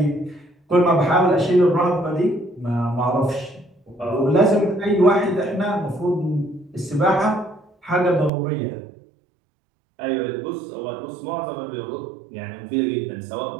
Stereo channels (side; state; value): left; drops out; at 8.3 s